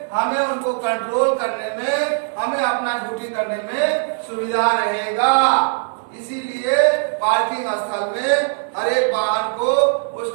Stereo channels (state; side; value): silent; left; digital silence